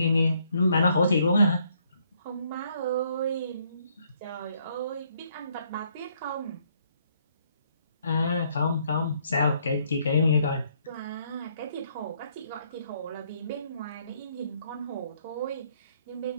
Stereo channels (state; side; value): inverted; both; correlation -0.69